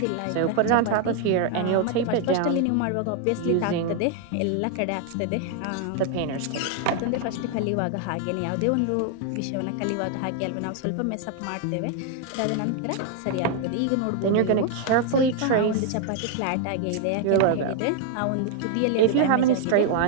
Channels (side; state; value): both; different; correlation 0.00